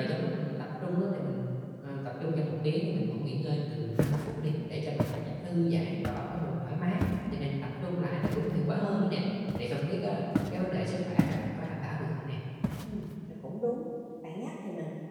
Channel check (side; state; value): both; identical; correlation 1.00